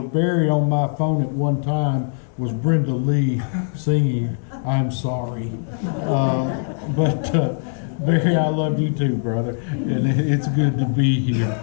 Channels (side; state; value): right; silent; digital silence